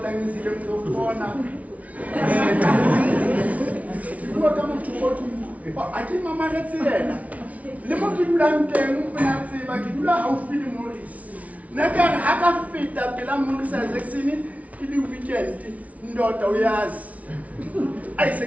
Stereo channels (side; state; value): left; late; 0.068 ms